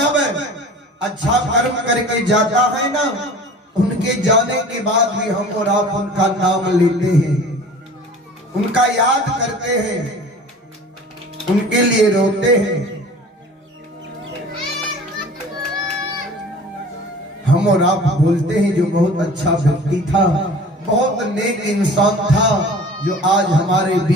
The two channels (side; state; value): both; normal; correlation 0.43